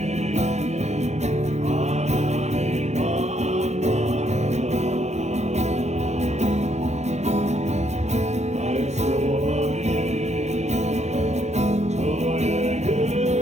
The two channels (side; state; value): left; late; 0.33 ms